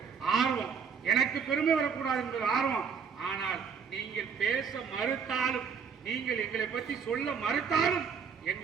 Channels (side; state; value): left; quieter; 6.4 dB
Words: ஆர்வம். எனக்கு பெருமை வரக்கூடாது என்பது ஆர்வம். ஆனால் நீங்கள் பேச மறுத்தாலும், நீங்கள் எங்களை பற்றி சொல்ல மறுத்தாலும்